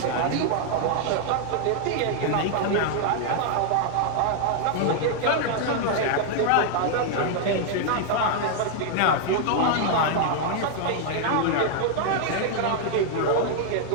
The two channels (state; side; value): different; both; correlation 0.00